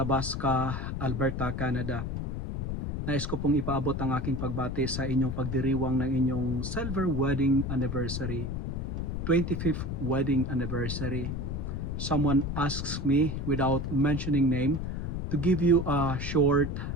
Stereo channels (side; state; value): left; noise; rumble, 3 dB below the sound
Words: Alberta, Canada. Nais ko pong ipaabot ang aking pagbati sa inyong pagdiriwang ng inyong silver wedding anniversary, 25th wedding anniversary. Someone asks me without mentioning name to give you a short